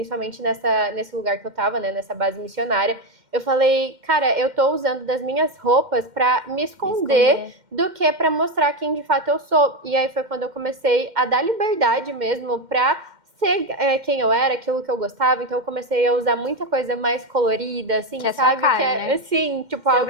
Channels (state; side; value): late; left; 2.1 ms